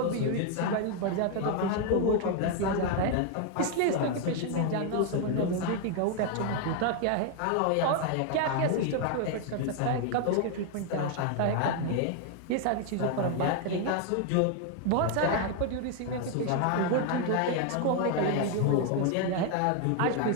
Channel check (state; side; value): different; both; correlation 0.01